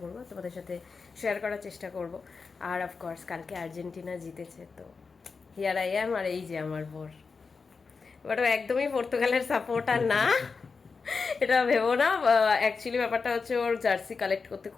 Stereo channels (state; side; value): quieter; right; 4.8 dB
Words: করব, তোমাদের সাথে শেয়ার করার চেষ্টা করব। আর অফকোর্স কালকে আর্জেন্টিনা জিতেছে, তো হিয়ার আই অ্যাম, আর এই যে আমার বোর। বাট ও একদমই পর্তুগালের সাপোর্টার না, এটা ভেবো না। অ্যাকচুয়ালি ব্যাপারটা হচ্ছে, ওর জার্সি কালেক্ট করতে